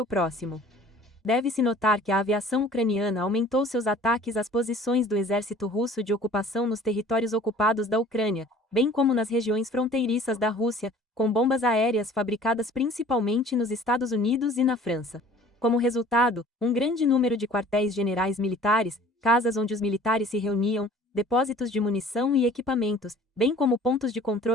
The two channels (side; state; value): both; normal; correlation 0.49